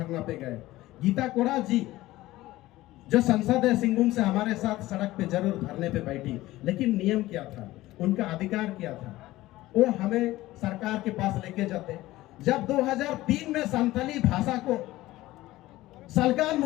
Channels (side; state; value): right; quieter; 17.1 dB